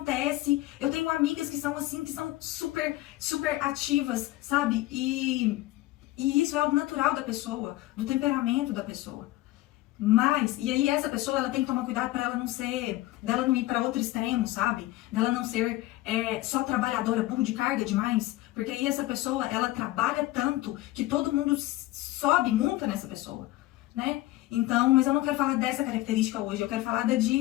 Eu tenho amigas que são assim, que são super, super ativas, sabe? E isso é algo natural da pessoa, do temperamento da pessoa. Mas, e aí essa pessoa, ela tem que tomar cuidado para ela não ser, dela não ir para outro extremo, sabe? Dela não ser só trabalhadora, burro de carga demais. Porque aí essa pessoa, ela trabalha tanto que todo mundo sobe, monta nessa pessoa, né? Então, mas eu não quero falar dessa característica hoje, eu quero falar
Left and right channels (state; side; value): quieter; right; 17.4 dB